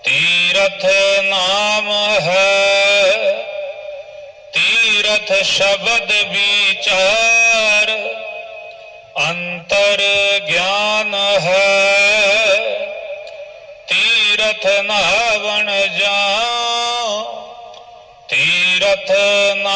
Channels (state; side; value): identical; both; correlation 1.00